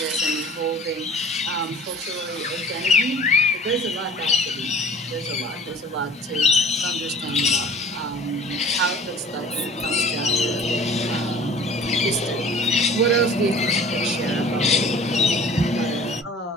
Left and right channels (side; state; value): both; normal; correlation 0.46